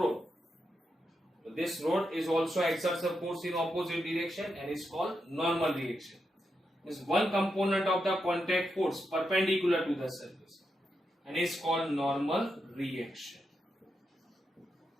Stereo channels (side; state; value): both; normal; correlation 0.85